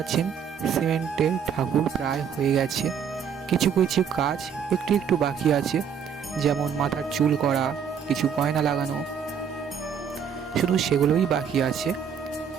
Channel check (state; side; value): quieter; left; 7.5 dB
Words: সিমেন্টের ঠাকুর প্রায় হয়ে গেছে, কিছু কিছু কাজ একটু একটু বাকি আছে, যেমন মাথার চুল করা, কিছু গয়না লাগানো, শুধু সেগুলোই বাকি আছে।